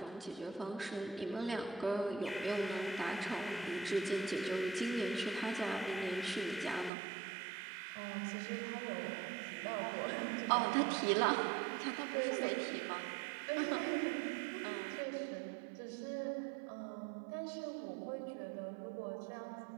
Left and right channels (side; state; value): left; drops out; at 6.9 s